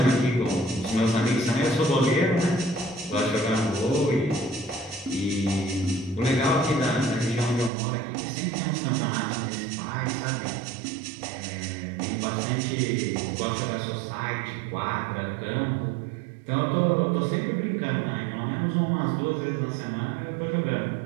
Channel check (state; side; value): drops out; left; at 7.7 s